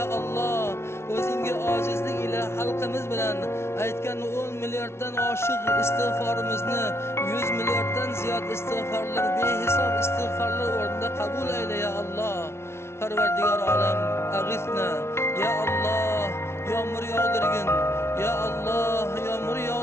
Alloh, o'zingga ojizlik ila xalqimiz bilan aytgan 10 milliarddan oshiq istig'forimizni 100 milliarddan ziyod istig'forlar, behisob istig'forlar o'rnida qabul ayla ya Alloh. Parvardigor olam, ag'ithna ya Alloh, yomg'ir yog'dirgin. Ya Alloh, yomg'ir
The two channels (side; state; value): right; late; 0.13 ms